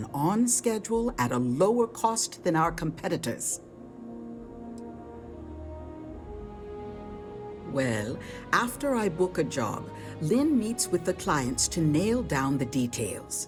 on schedule at a lower cost than our competitors. Well, after I book a job, Lynn meets with the clients to nail down the details.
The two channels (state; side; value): identical; both; correlation 1.00